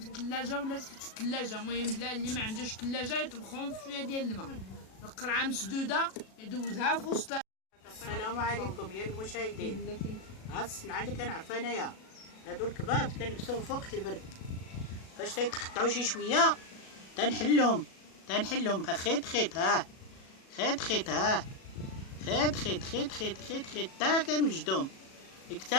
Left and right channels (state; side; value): late; right; 37 ms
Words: الثلاجه ولا تحت الثلاجه. المهم بلا اللي ما عندوش الثلاجه يطبخهم في شويه ديال الماء، القرعه مسدوده يدوزها في وسط. السلام عليكم يا المشاهدين. هاد الصنعه اللي كنعرفها انايا، هادو الكباب كنلبسوهم في وقت البرد، فاش تيتقطعوا شي شويه تنحلهم خيط ها، خيط ها، خيط تا كنوجدهم